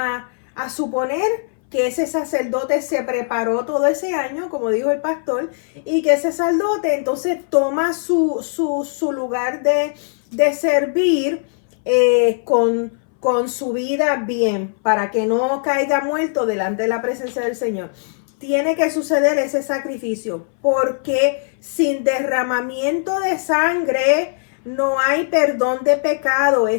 suponer que ese sacerdote se preparó todo ese año, como dijo el pastor, y que ese sacerdote entonces toma su lugar de servir con su vida bien, para que no caiga muerto delante de la presencia del Señor. Tiene que suceder ese sacrificio, porque sin derramamiento de sangre no hay perdón de pecado.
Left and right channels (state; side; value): silent; right; 61 dB below the other